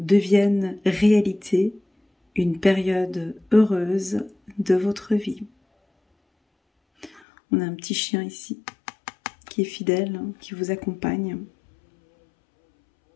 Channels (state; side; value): drops out; right; at 7.2 s